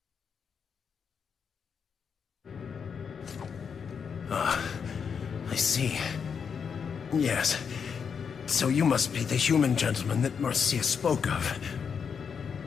I see. Yes. So you must be the human gentleman that Marcia spoke of.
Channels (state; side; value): quieter; right; 6.6 dB